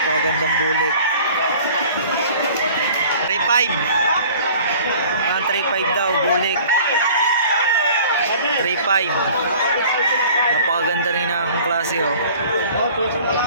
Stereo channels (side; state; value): both; inverted; correlation -0.48